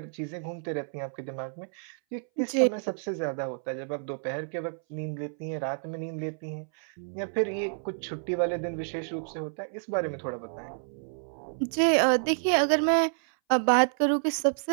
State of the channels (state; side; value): silent; left; 58 dB below the other